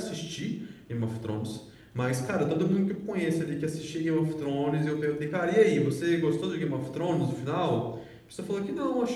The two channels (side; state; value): both; identical; correlation 1.00